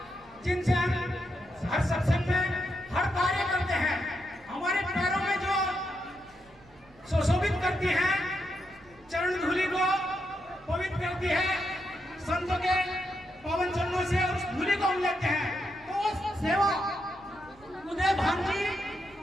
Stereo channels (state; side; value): noise; right; rumble, 27 dB below the sound